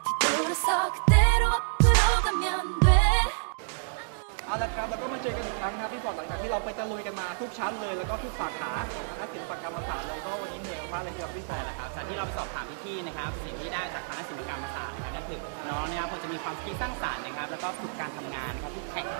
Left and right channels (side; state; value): left; silent; digital silence